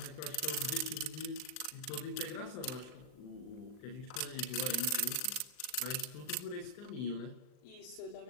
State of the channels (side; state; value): right; late; 40 ms